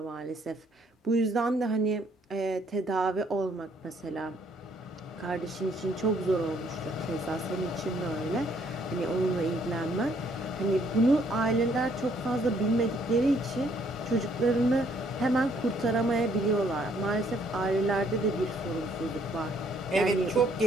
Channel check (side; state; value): both; normal; correlation 0.66